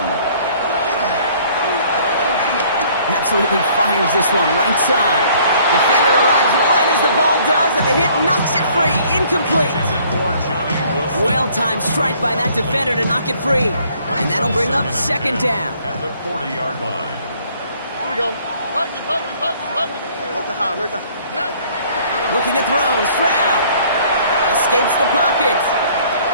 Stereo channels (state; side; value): inverted; both; correlation -0.59